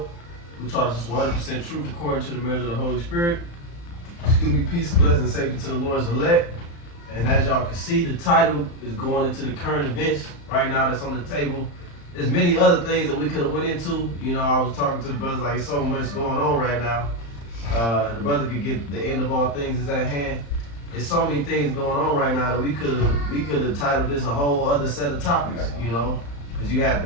who taught us 100% truth according to the measure of the Holy Spirit. Excuse me, peace, blessing, and safety to the Lord's elect. And as y'all can see, the title is going into the current events right now that's on the table. There's many other things that we could have went into. You know, I was talking to the brothers like, so much going on right now. The brother could get the end of all things is at hand. There's so many things going on right now that we could have titled this a whole other set of topics, you know, because you had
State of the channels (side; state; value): right; late; 35 ms